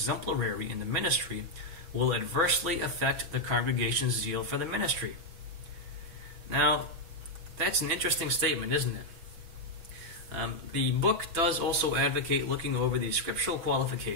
in the ministry will adversely affect the congregation's zeal for the ministry. Now, that's an interesting statement, isn't it? The book does also advocate looking over the scriptural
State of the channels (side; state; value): left; late; 6.1 ms